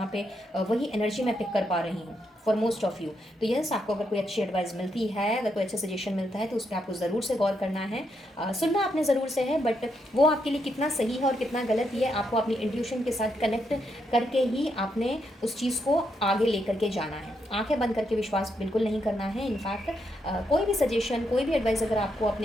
पे वही एनर्जी मैं पिक कर पा रही हूँ फॉर मोस्ट ऑफ यू. तो यस, आपको अगर कोई अच्छी एडवाइस मिलती है, अगर कोई अच्छा सजेशन मिलता है, तो उस पर आपको ज़रूर से गौर करना है. सुनना आपने ज़रूर से है, बट वो आपके लिए कितना सही है और कितना गलत, ये आपको अपनी इंट्यूशन के साथ कनेक्ट करके ही आपने उस चीज़ को आगे लेकर के जाना है. आंखें बंद करके विश्वास बिल्कुल नहीं करना है. इनफैक्ट कोई भी सजेशन, कोई भी एडवाइस अगर आपको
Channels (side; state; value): both; normal; correlation 0.79